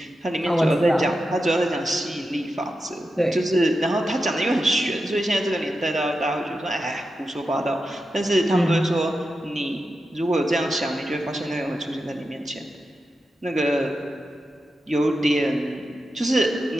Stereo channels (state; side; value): normal; both; correlation 0.90